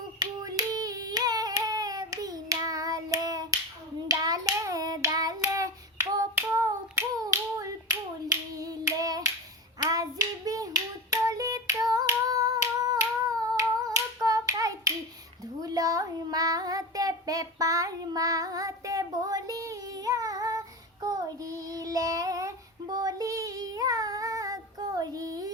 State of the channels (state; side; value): normal; both; correlation 0.23